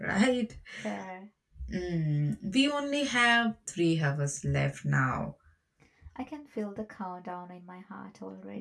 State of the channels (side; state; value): both; identical; correlation 1.00